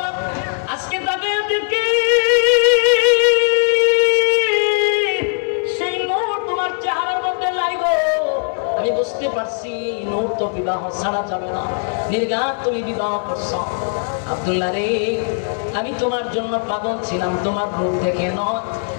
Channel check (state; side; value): silent; right; 67 dB below the other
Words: আজকে তাকে সেই নূর তোমার চেহারার মধ্যে লাগবে। আমি বুঝতে পারছি নূর তো বিবাহ ছাড়া যাবে না, নির্ঘাত তুমি বিবাহ করছো। আব্দুল্লাহ রে, আমি তোমার জন্য পাগল ছিলাম, তোমার রূপ দেখে নয়,